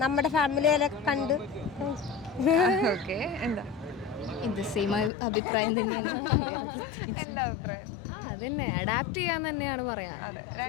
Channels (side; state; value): right; drops out; at 5.1 s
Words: നമ്മുടെ ഫാമിലിയെ കണ്ട്. ഓക്കെ, എന്താ ഇത് സെയിം അഭിപ്രായം. എന്താ അഭിപ്രായം? അതന്നെ, അഡാപ്റ്റ് ചെയ്യാൻ തന്നെയാണ് പറയാ. അതെ,